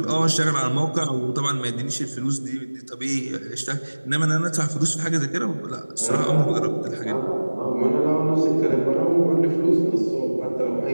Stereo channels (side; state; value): both; inverted; correlation -1.00